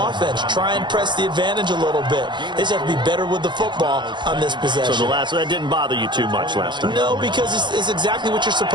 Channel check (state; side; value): late; left; 0.22 ms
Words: Try and press the advantage a little bit. They just have to be better with the football on this possession. So that didn't bother you too much last time? No, because it's exactly what you're